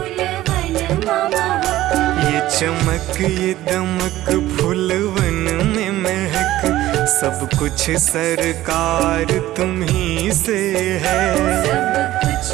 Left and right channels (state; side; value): quieter; left; 15.1 dB